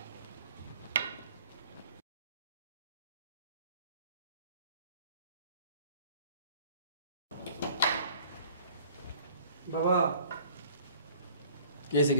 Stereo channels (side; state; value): both; inverted; correlation -0.51